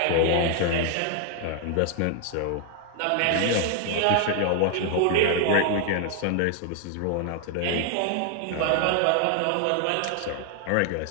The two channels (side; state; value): both; different; correlation 0.00